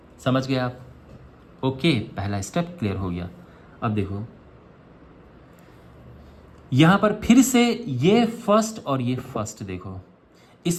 समझ गए आप? ओके, पहला स्टेप क्लियर हो गया। अब देखो यहाँ पर फिर से ये फर्स्ट और ये फर्स्ट, देखो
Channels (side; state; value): both; identical; correlation 1.00